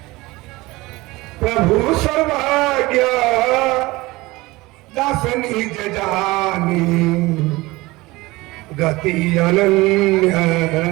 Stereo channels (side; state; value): left; quieter; 20.9 dB